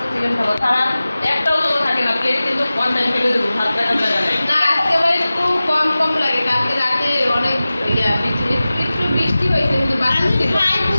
চিকেন খাবো তারা একটাও তো থাকে না প্লেট কিন্তু ওয়ান টাইম ফেলে দেবো ভাত রাখার জায়গা নেই না আজকে আবার একটু কম লাগে কালকে রাতে অনেক একটু বৃষ্টি হয়েছে কিন্তু বাতাস ছিল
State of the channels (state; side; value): inverted; both; correlation -0.97